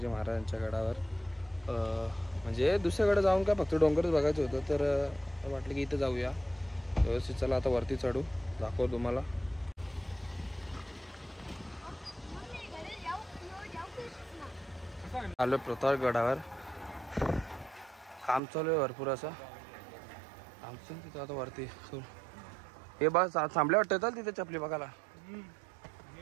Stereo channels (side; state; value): left; drops out; at 18.4 s